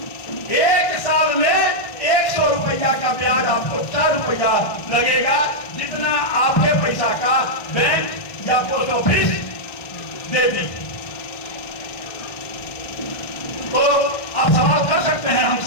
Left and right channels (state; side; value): late; right; 1.6 ms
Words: 1 साल में 100 रुपया का ब्याज आपको 4 रुपया लगेगा, जितना आपके पैसा का बैंक या पोस्ट ऑफिस दे दी। तो आप सवाल कर सकते हैं